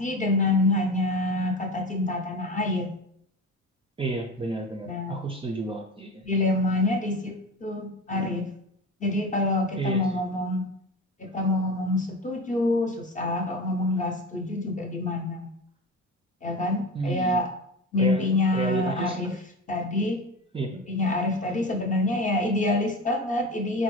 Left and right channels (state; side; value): normal; both; correlation 0.28